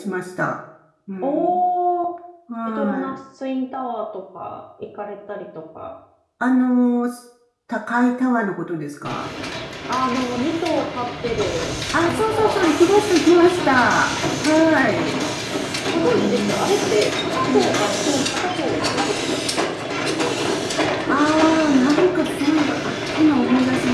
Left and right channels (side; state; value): both; identical; correlation 1.00